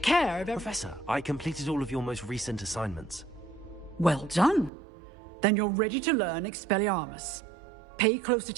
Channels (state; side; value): drops out; left; at 4.7 s